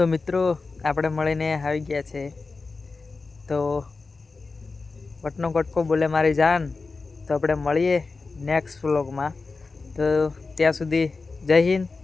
મિત્રો આપણે મળીને આવી ગયા છે. તો વટનો કટકો બોલે મારી જાન. તો આપણે મળીએ નેક્સ્ટ વ્લોગમાં. તો ત્યાં સુધી જય હિન્દ,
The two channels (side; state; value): right; quieter; 4.0 dB